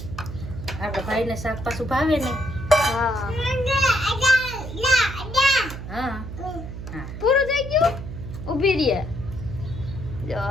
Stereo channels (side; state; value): right; noise; hum, 9 dB below the sound